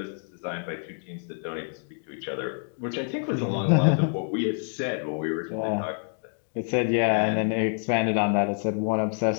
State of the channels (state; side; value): silent; right; 60 dB below the other